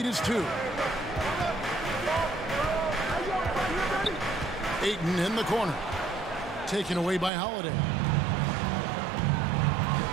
is 2. Ayton in the corner. Taken away by Holiday.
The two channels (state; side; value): drops out; left; at 7.3 s